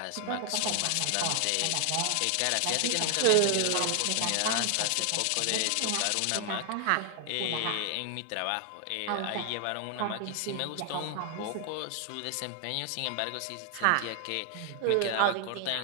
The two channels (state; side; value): different; both; correlation 0.00